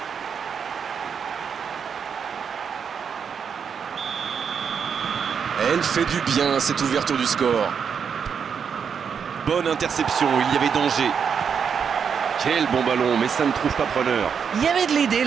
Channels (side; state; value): left; quieter; 6.8 dB